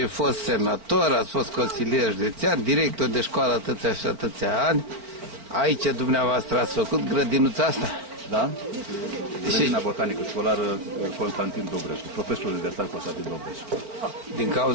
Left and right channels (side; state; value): left; late; 4.4 ms